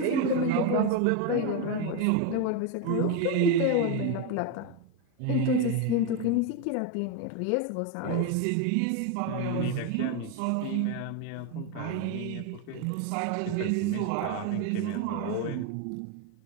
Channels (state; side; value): different; both; correlation 0.02